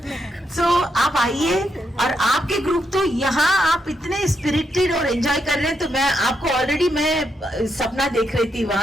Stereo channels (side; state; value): both; normal; correlation 0.80